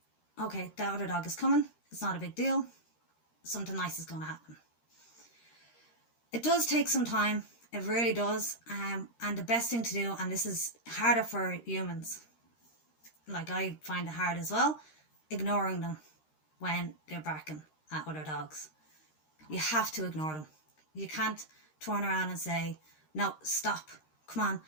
okay, the other dog is coming, it's not a big deal, something nice is going to happen. It does take some time, it really does, and the best thing to do, and this is harder for humans, like I find it hard as well, ignoring them when they're barking at other dogs. You have to ignore them. You can't turn around and say, no, stop, come on,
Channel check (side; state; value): right; late; 13 ms